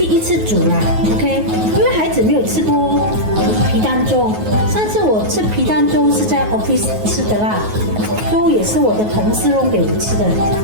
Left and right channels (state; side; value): late; left; 9.4 ms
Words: 一次煮啦 ，OK， 因为孩子没有吃过皮蛋粥，上次我吃皮蛋粥是在 office 吃的啦，粥也是我的同事弄给我吃的，